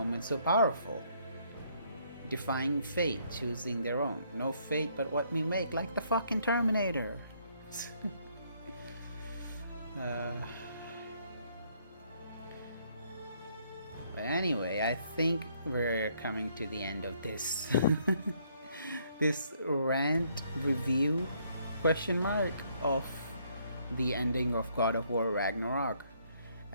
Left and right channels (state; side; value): inverted; both; correlation -0.68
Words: so powerful. Defying fate, choosing their own. No fate but what we make, like the fucking Terminator. But anyway, I think we're coming to the end of this this rant review question mark of the ending of God of War Ragnarok.